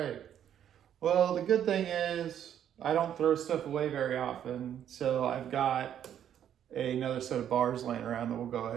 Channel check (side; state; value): left; quieter; 9.9 dB